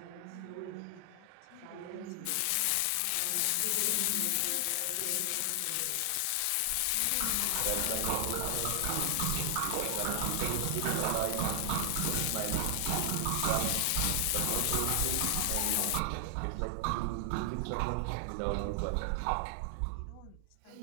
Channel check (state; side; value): different; both; correlation 0.00